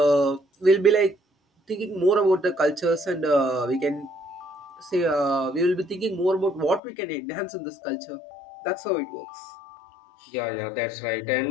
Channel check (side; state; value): right; drops out; at 6.8 s